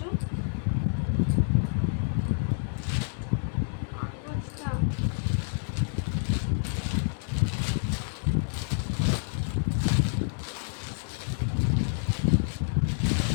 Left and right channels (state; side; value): silent; right; 59 dB below the other